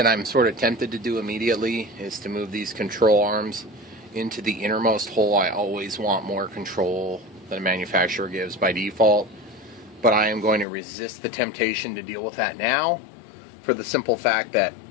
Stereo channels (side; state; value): right; drops out; at 10.7 s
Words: I'm sort of tempted to do immediately is to move these control arms into the innermost hole. I always want more control than a manufacturer gives by default, but I am going to resist the temptation to deal with that now for the simple fact that